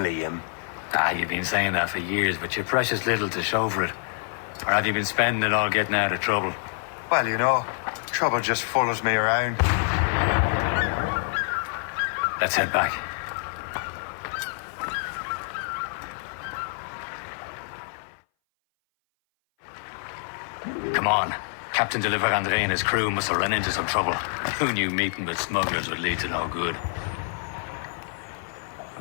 You've been saying that for years, but you're precious little to show for it. Or have you been spending it all getting out of trouble? Well, you know, trouble just follows me around. Let's head back. Come on. Captain de Andre and his crew must have run into some trouble. Who knew meeting with smugglers would lead to no good?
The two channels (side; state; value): right; silent; 58 dB below the other